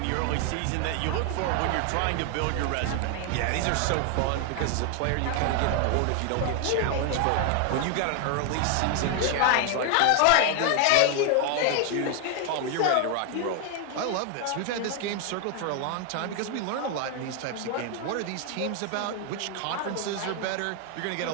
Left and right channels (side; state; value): both; different; correlation 0.00